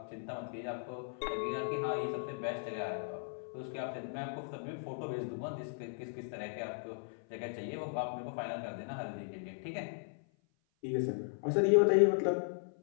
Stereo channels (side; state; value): right; silent; 53 dB below the other